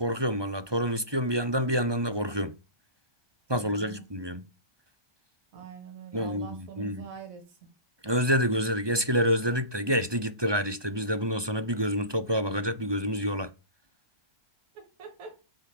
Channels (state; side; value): late; left; 1.2 ms